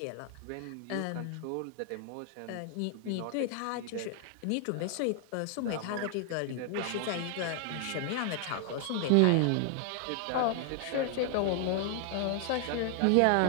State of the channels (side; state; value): both; different; correlation 0.00